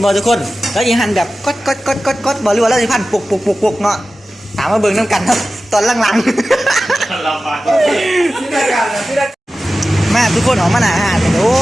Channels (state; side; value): normal; both; correlation 0.95